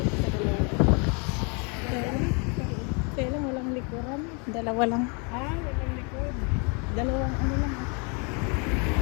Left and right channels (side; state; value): right; quieter; 34.7 dB